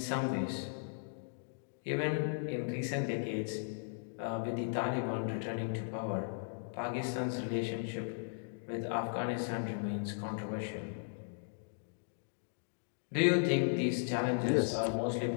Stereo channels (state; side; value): silent; right; digital silence